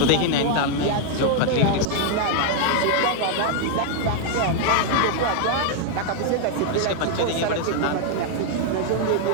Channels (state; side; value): different; both; correlation 0.00